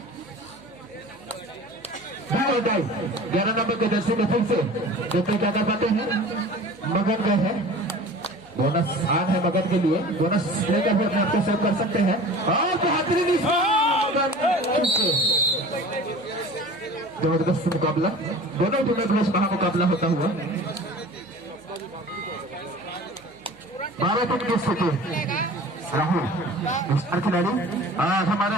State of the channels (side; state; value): right; noise; hum, 28 dB below the sound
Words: नंबर के जर्सी में फिर से देखते क्या कर पाते हैं। मगन गए हैं, बोनस आन है मगन के लिए, बोनस लेकर भी अपने आप को सेव कर सकते हैं। और बेहतरीन जबरदस्त मुकाबला, दोनों टीमों के बीच महामुकाबला होता हुआ। 12 टीम की स्थिति राहुल स्टार खिलाड़ी और हमारे